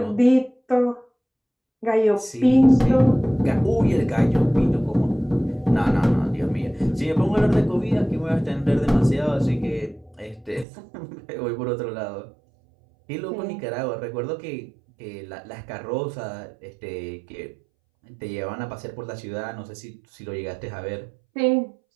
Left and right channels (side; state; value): left; drops out; at 10.7 s